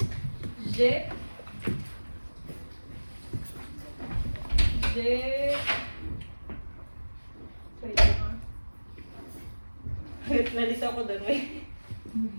je, wait lang ah. Nalito ako doon, wait.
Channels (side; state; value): both; inverted; correlation -1.00